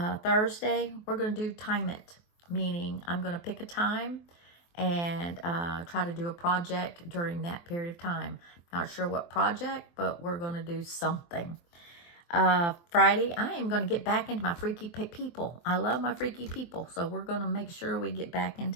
Thursday, we're going to do time it, meaning I'm going to pick a time and try to do a project during that period of time. Not sure what project, but we're going to do something. Friday, I am going to get back into my freaky people. I love my freaky people, so we're going to make sure we get back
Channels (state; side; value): late; right; 23 ms